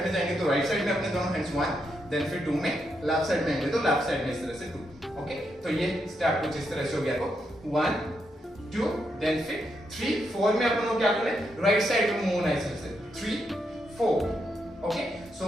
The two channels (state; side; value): normal; both; correlation 0.81